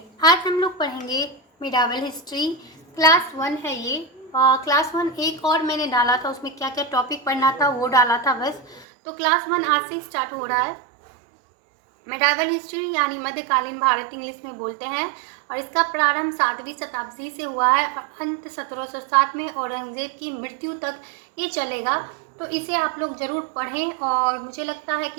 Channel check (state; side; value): drops out; left; at 8.8 s